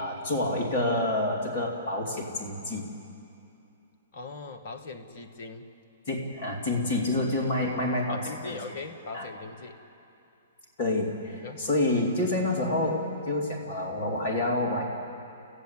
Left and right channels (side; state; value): both; inverted; correlation -0.35